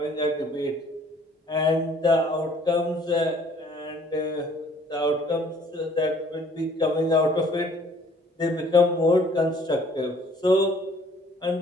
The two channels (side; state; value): both; normal; correlation 0.57